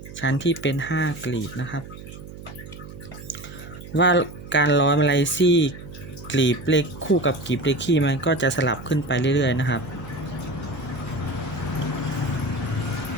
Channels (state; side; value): noise; right; hum, 14 dB below the sound